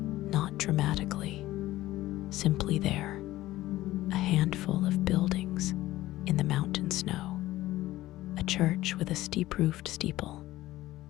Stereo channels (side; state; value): right; quieter; 16.2 dB